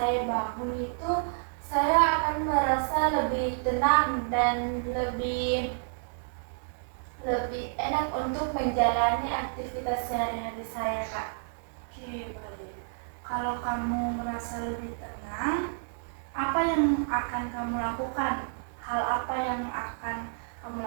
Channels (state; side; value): silent; left; 58 dB below the other